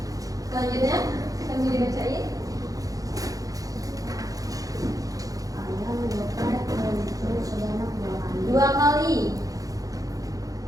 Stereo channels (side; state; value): left; late; 0.17 ms